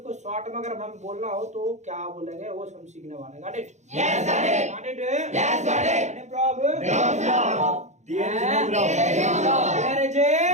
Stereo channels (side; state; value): left; late; 0.34 ms